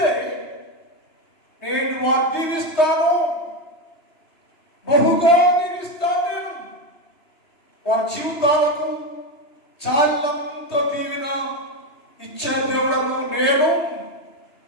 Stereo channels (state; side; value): late; right; 2.9 ms